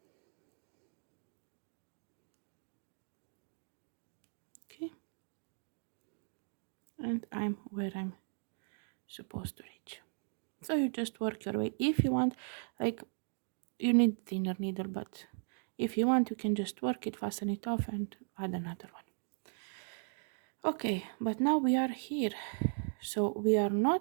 okay, and I'm where I'm supposed to reach. So you just work your way. If you want, like, you need thinner needle, but if you want, you can just work it, fasten it off, and add another one. Okay, but now we are here, so we are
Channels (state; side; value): silent; left; 53 dB below the other